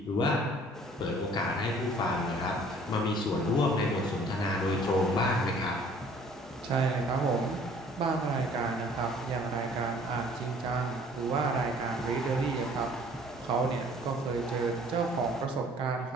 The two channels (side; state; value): both; normal; correlation 0.54